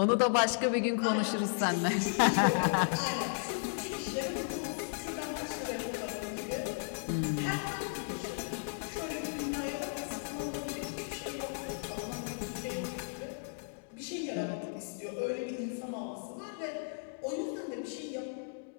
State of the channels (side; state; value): right; silent; digital silence